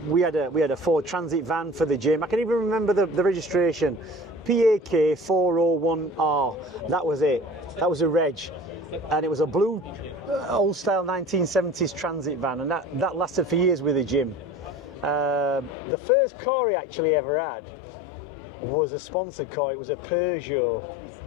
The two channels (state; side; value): drops out; right; at 15.8 s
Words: we had a Ford Transit van for the gym. I can even remember the registration, PAK 401R. That was it. That was a reg, and it was a blue. Old style 1970s transit van, and that lasted for years with the gym. The first car he actually ever had was a sponsored car. It was a Peugeot.